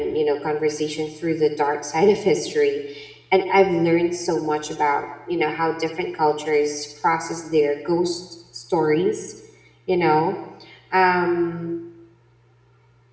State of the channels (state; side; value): identical; both; correlation 1.00